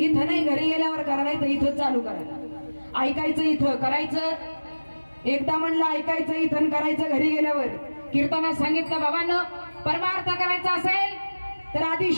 नाही. घरी गेल्यावर करा नाही तर इथं चालू करायला. ऐकायचं इथं करायचं. एकदा म्हणलं ऐकायचं इथं करायचं घरी गेल्यावर. कीर्तनात सांगितलं बाबांनो परमार्थ करायचा असेल तर आधी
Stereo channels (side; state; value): both; inverted; correlation -1.00